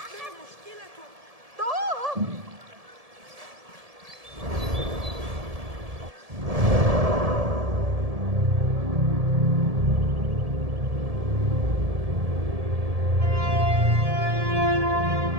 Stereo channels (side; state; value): left; late; 1.7 ms